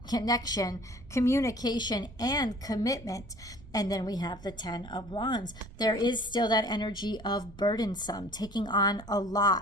connection, communication, and commitment. And then we have the 10 of Wands. There is still that energy of burdensome, taking on a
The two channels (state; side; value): noise; right; rumble, 18 dB below the sound